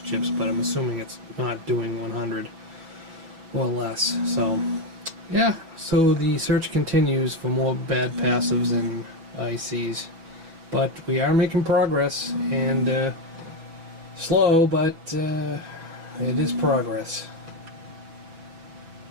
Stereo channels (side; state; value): left; late; 6.1 ms